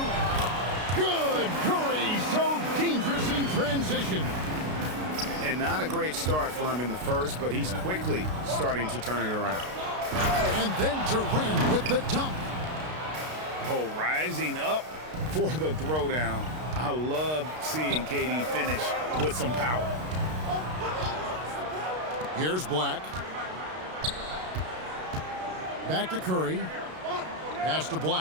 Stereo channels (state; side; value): late; left; 32 ms